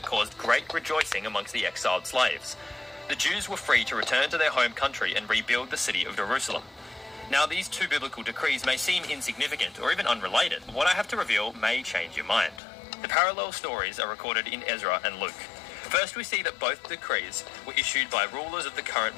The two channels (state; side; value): drops out; right; at 12.6 s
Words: caused great rejoicing amongst the exiled slaves. The Jews were free to return to their home country and rebuild the city of Jerusalem. Now, these two biblical decrees may seem insignificant or even unrelated, but what I have to reveal may change your mind. The parallel stories are recorded in Ezra and Luke. First, we see that both decrees were issued by rulers of the current